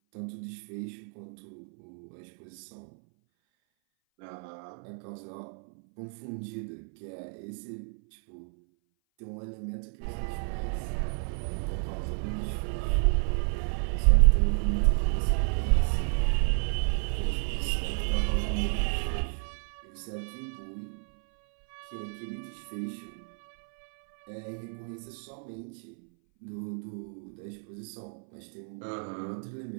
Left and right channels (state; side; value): silent; left; 57 dB below the other